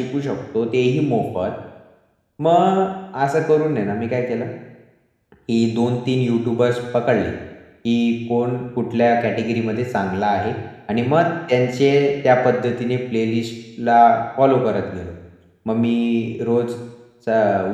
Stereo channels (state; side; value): identical; both; correlation 1.00